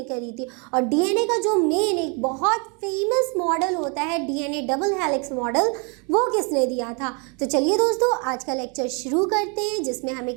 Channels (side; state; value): left; quieter; 34.4 dB